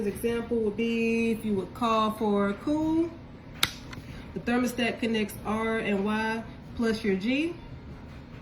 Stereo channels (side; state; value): both; identical; correlation 1.00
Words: example would be if you would call for cool, the thermostat connects R and Y plus your G.